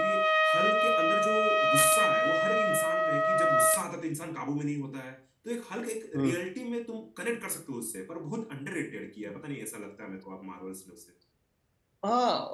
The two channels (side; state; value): both; identical; correlation 1.00